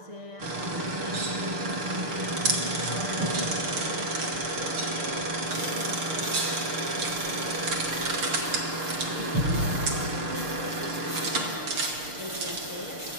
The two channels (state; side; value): late; left; 6.6 ms